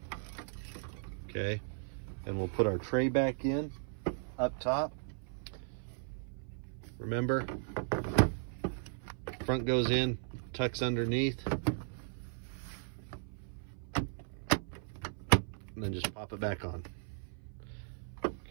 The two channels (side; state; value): left; silent; 53 dB below the other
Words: Okay, and we'll put our tray back in up top. Remember, front goes in, tucks underneath. and then just pop it back on.